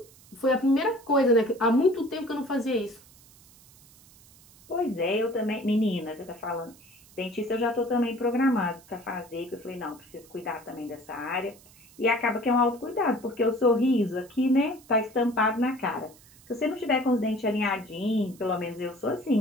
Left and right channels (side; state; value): right; noise; hiss, 25 dB below the sound